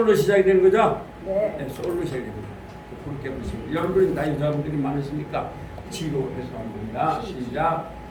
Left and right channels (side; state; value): both; identical; correlation 1.00